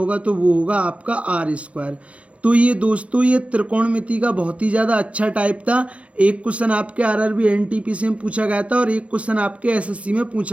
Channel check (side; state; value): left; late; 0.063 ms